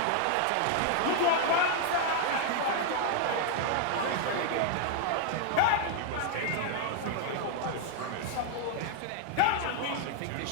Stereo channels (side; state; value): both; different; correlation 0.00